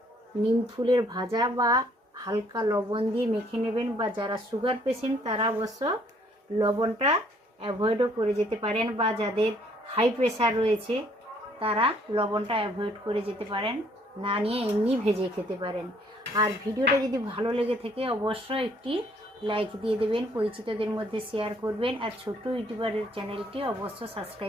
নিম ফুলের ভাজা বা হালকা লবণ দিয়ে মেখে নেবেন, বা যারা সুগার পেশেন্ট তারা অবশ্য লবণটা অ্যাভয়েডও করে যেতে পারেন, বা যাদের হাই প্রেশার রয়েছে তারা লবণটা অ্যাভয়েড করে যেতে পারেন, না নিয়ে এমনি ভেজে খেতে পারেন। আর ভিডিওটা যদি ভালো লেগে থাকে অবশ্যই একটি লাইক দিয়ে দেবেন, পরিচিতদের মধ্যে শেয়ার করবেন, আর ছোট্ট ইউটিউবারের চ্যানেলটি অবশ্য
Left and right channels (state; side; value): normal; both; correlation 0.64